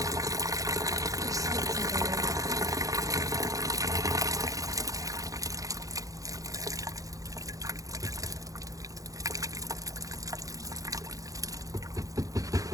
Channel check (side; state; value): left; late; 0.17 ms